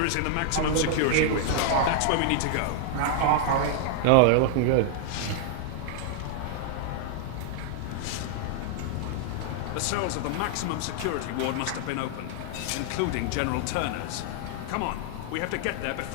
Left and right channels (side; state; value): both; different; correlation 0.00